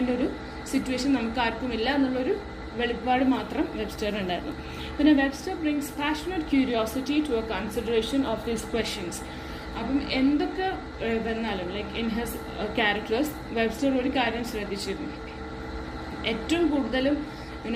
ഒരു സിറ്റുവേഷൻ നമുക്ക് ആർക്കുമില്ല എന്നുള്ളൊരു വെളിപ്പാട് മാത്രം വെബ്സ്റ്റർ ഉണ്ടായിരുന്നു. പിന്നെ Webster brings passionate curiosity to a consideration of these questions. അപ്പം എന്തൊക്കെ വന്നാലും like in his characters Webster ഒരു കാര്യം ശ്രദ്ധിച്ചിരുന്നു. ഏറ്റവും കൂടുതലും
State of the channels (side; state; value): both; identical; correlation 1.00